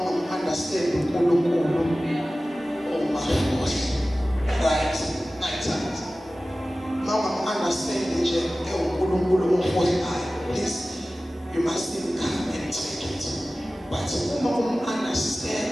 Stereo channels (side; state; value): both; normal; correlation 0.96